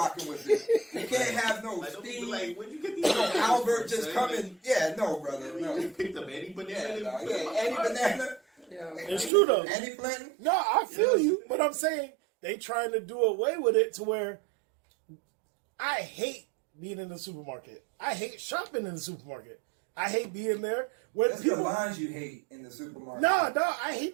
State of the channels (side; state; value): left; drops out; at 9.3 s